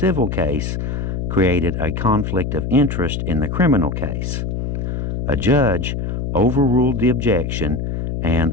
case created a conflict of interest in the criminal case. A judge overruled the objection and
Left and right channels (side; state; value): left; noise; hum, 2 dB below the sound